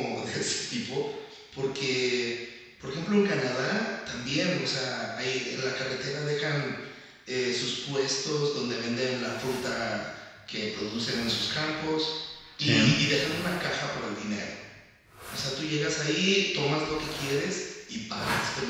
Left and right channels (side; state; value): both; identical; correlation 1.00